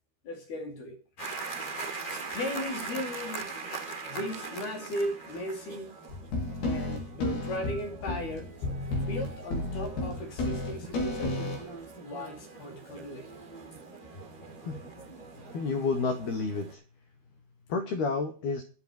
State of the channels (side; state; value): right; late; 13 ms